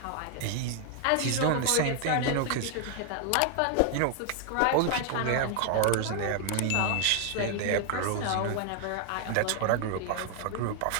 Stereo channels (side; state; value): both; different; correlation 0.00